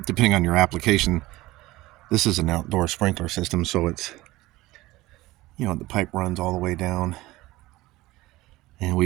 depending on your application. This is an outdoor sprinkler system, so it's, the pipe runs all the way down, and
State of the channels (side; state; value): left; quieter; 18.7 dB